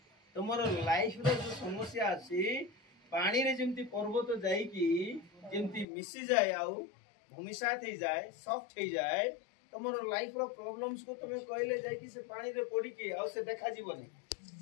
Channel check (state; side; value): drops out; right; at 5.9 s